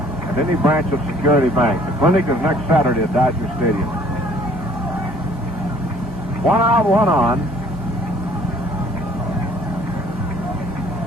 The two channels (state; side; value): normal; both; correlation 0.57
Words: any branch of Security Bank. The clinic is next Saturday at Dodger Stadium. 1 out, 1 on.